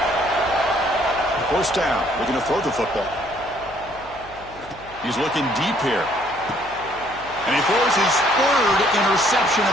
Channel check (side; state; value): left; noise; hum, 21 dB below the sound